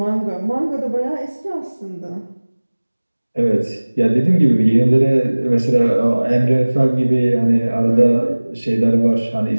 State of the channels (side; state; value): both; inverted; correlation -1.00